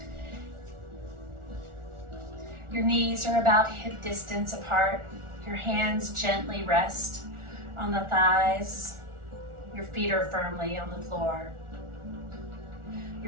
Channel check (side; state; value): left; late; 1.4 ms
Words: Your knees are about hip distance apart. Your hands gently rest on the thighs. Your feet are firmly on the floor.